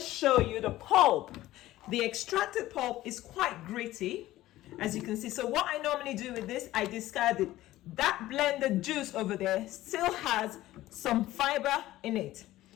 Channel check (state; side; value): quieter; right; 15.7 dB